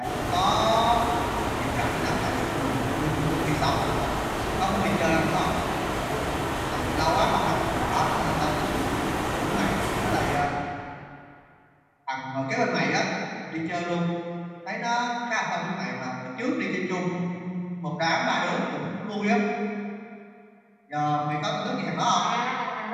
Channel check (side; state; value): both; identical; correlation 1.00